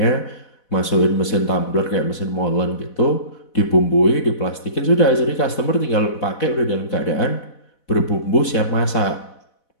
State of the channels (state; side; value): late; right; 4.1 ms